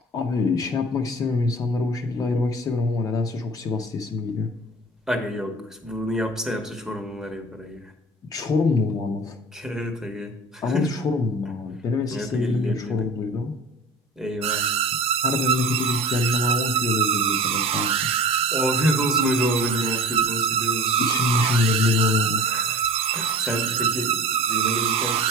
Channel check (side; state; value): both; normal; correlation 0.38